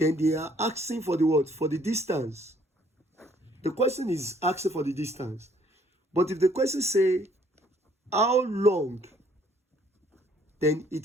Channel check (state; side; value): normal; both; correlation 0.62